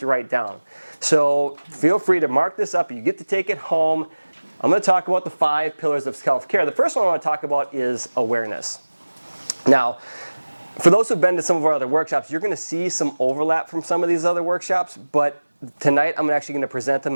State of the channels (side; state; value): both; inverted; correlation -1.00